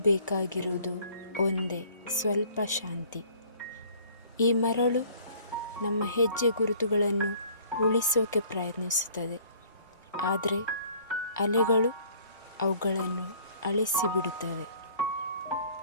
ಬೇಕಾಗಿರುವುದು ಒಂದೇ, ಸ್ವಲ್ಪ ಶಾಂತಿ. ಈ ಮರಳು ನಮ್ಮ ಹೆಜ್ಜೆ ಗುರುತುಗಳನ್ನು ಉಳಿಸೋಕೆ ಪ್ರಯತ್ನಿಸುತ್ತದೆ, ಆದರೆ ಅಲೆಗಳು ಅವುಗಳನ್ನು ಅಳಿಸಿಬಿಡುತ್ತವೆ.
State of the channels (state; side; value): inverted; both; correlation -0.55